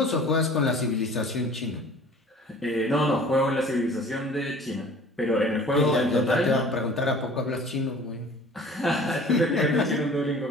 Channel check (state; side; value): normal; both; correlation 0.47